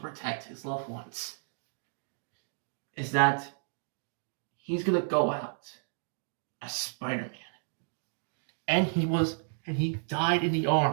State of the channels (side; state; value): left; silent; digital silence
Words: protect his loved ones. Is that he's going to go out as Spider-Man. And he died in the